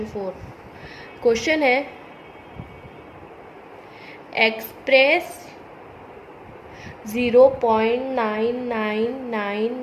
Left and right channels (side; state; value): both; identical; correlation 1.00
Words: 4। Question है express